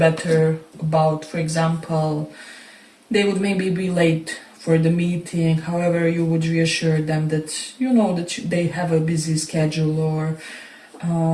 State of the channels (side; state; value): both; identical; correlation 1.00